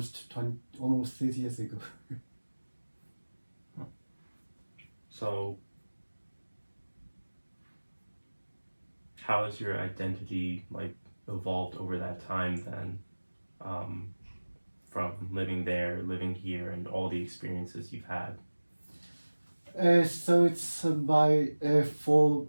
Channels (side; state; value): both; inverted; correlation -1.00